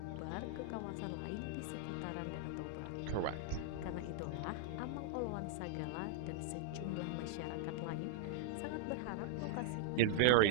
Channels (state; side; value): different; both; correlation -0.01